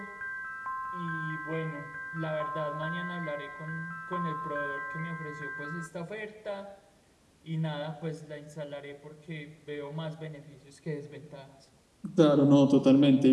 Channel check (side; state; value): both; identical; correlation 1.00